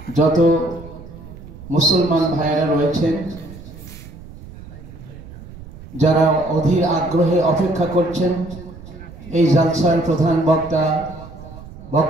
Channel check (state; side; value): noise; right; rumble, 16 dB below the sound